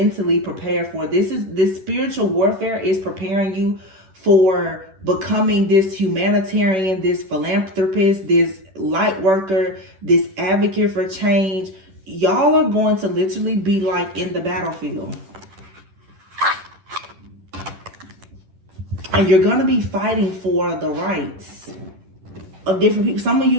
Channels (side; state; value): left; late; 10 ms